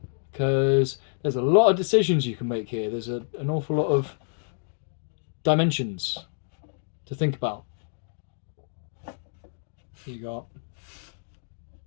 because there's a lot of decisions you can make here. There's an awful lot of dimensions to think about. You got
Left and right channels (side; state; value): right; silent; 60 dB below the other